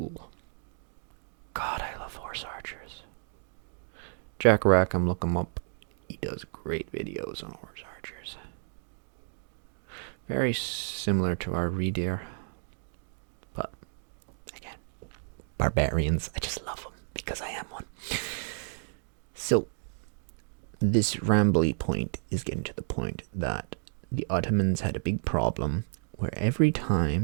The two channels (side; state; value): left; silent; 57 dB below the other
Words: God, I love horse archers. Jack Rackham, look him up. He does great videos on horse archers. Very similar to our reindeer. But, again, barbarians. I just love them because I am one. So, this rambly point is getting to the point that the Ottomans had a big problem where every